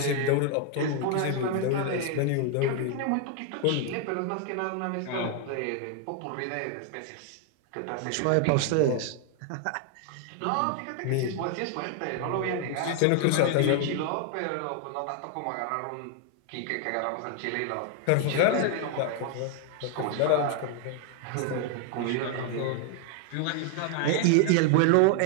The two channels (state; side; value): different; both; correlation 0.00